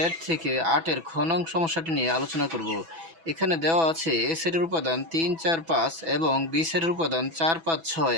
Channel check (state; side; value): late; left; 6.1 ms